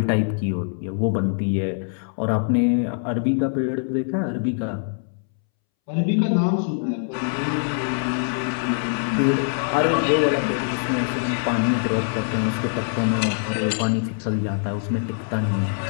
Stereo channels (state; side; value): silent; right; 63 dB below the other